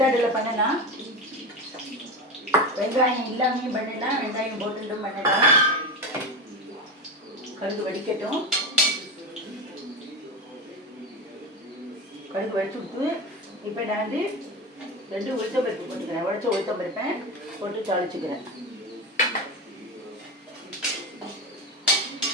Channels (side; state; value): both; normal; correlation 0.21